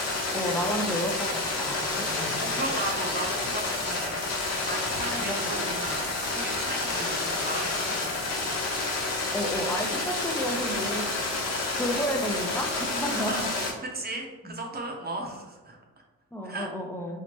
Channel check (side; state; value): both; normal; correlation 0.14